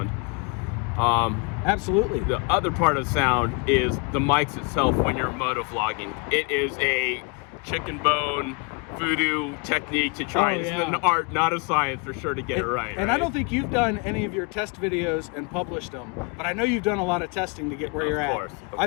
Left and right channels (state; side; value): quieter; right; 31.7 dB